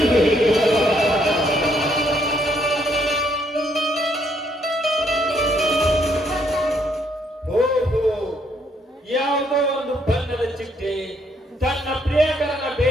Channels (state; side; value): normal; both; correlation 0.70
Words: ಯಾವುದೋ ಒಂದು ಬಣ್ಣದ ಚಿಟ್ಟೆ ತನ್ನ ಪ್ರಿಯಕರನ